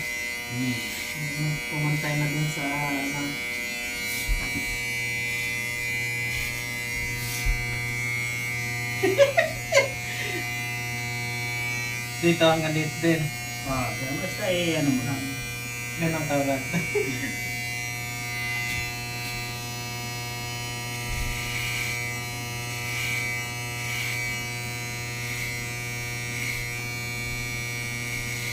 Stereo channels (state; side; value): identical; both; correlation 1.00